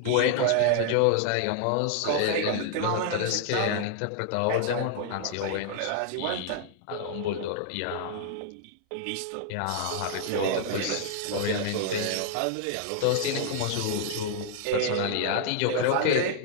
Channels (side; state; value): both; different; correlation 0.00